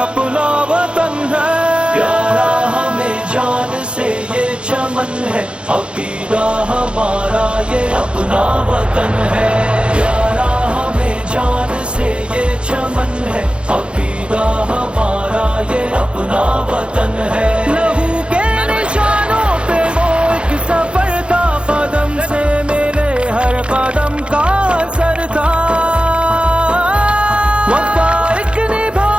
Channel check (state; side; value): late; left; 0.057 ms